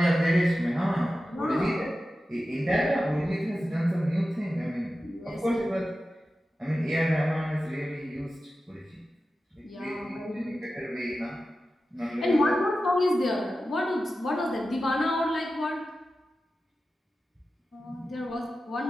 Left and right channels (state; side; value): normal; both; correlation 0.93